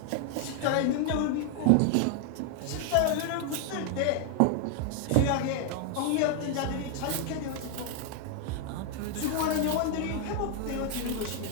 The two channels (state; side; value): different; both; correlation 0.00